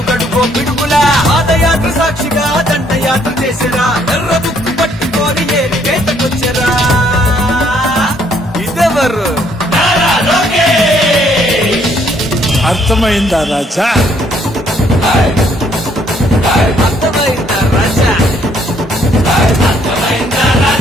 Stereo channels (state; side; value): normal; both; correlation 0.67